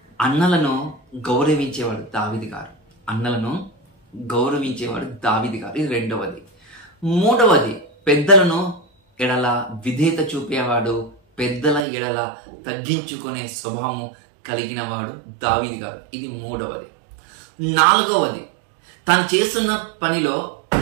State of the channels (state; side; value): drops out; left; at 11.8 s